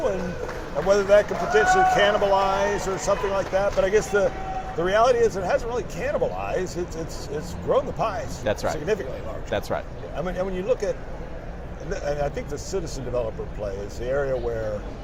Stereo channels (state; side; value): identical; both; correlation 1.00